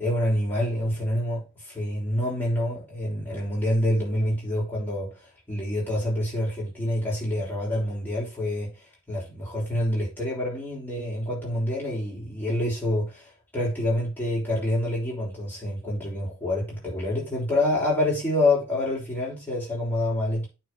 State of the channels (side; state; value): both; normal; correlation 0.65